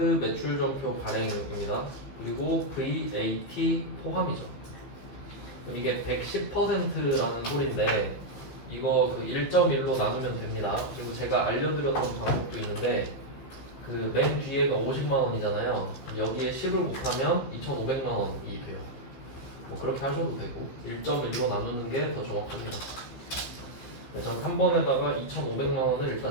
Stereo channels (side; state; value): right; late; 15 ms